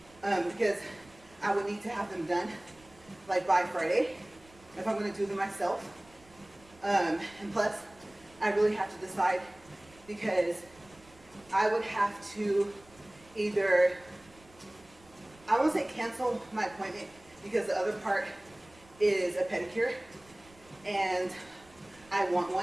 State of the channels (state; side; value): noise; right; rumble, 26 dB below the sound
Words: because I would need to have them done like by Friday if I'm going to do them myself. And plus, I really have to decide, because I would have to either, I won't say cancel my appointment, because the other part is a pedicure and I want